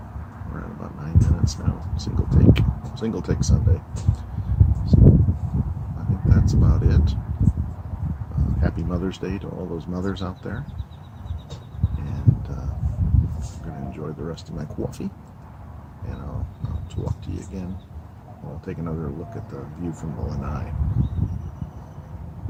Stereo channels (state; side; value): identical; both; correlation 1.00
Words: we're at about 9 minutes now. Single take Sunday. So I think that's about it. Happy Mother's Day to all those mothers out there. And I'm going to enjoy the rest of my coffee. And I'll talk to you again. I'll take another look at the view from the Lanai.